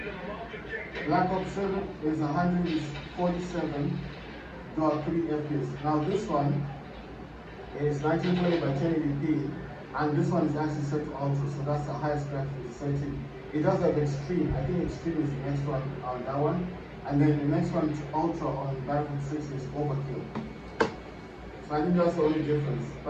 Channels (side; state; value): both; identical; correlation 1.00